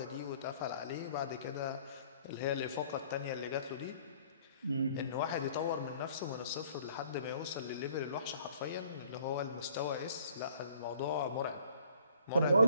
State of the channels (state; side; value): inverted; both; correlation -0.59